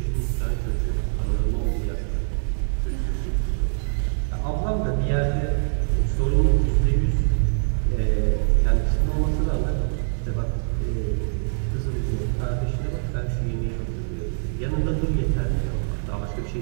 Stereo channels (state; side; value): silent; left; digital silence